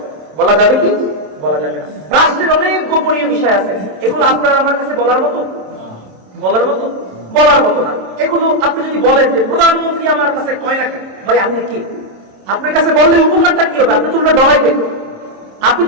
বলা যাবে কি বলা যাবে না? রাষ্ট্রের অনেক গোপনীয় বিষয় আছে, এগুলো আপনার আমার কাছে বলার মতো বলার মতো না। এগুলো আপনি যদি বলেন যে প্রধানমন্ত্রী আমার কাছে কয় না, ভাই আপনি কি, আপনার কাছে বললে উপকারটা কি হবে? আপনি তো ওটা ডরাইবেন, আপনি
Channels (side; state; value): left; late; 27 ms